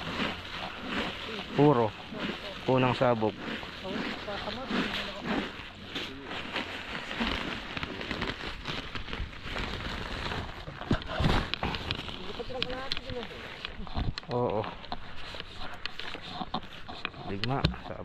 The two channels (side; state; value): both; identical; correlation 1.00